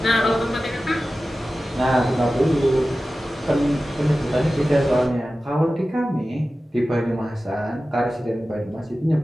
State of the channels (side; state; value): both; normal; correlation 0.95